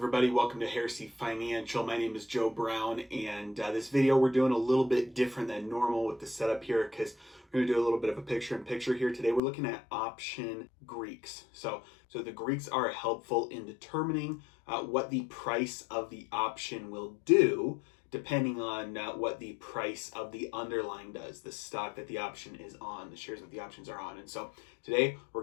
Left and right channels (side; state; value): right; drops out; at 9.4 s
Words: Welcome to Heresy Financial. My name is Joe Brown, and this video we're doing a little bit different than normal with the setup here because we're going to do a little bit of a picture-in-picture here. Today we're looking at option Greeks. So the Greeks are helpful in determining what the price of the option will do depending on what the price of the underlying does, the stock that the option is on, the shares that the options are on. And so today